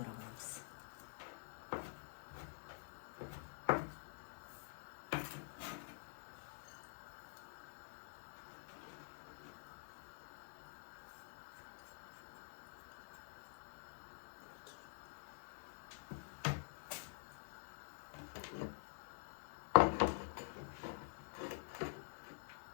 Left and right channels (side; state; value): right; silent; digital silence